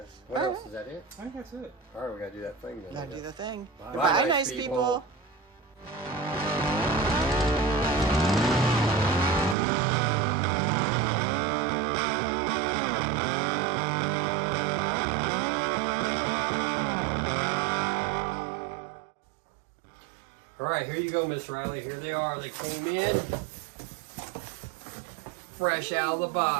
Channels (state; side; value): drops out; left; at 9.6 s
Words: What else? Is that it? I think that's it. All right, we got to do that thing then. Gotta do the thing. Bye. Goodbye, nice people. All right, here you go, Miss Riley. Here they are. They came in fresh out of the